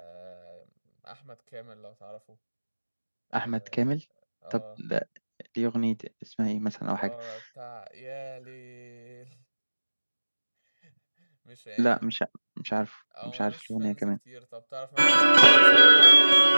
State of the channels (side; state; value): both; inverted; correlation -1.00